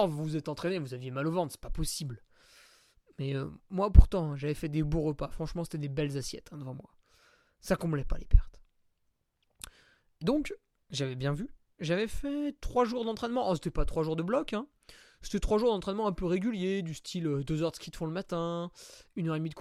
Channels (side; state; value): both; identical; correlation 1.00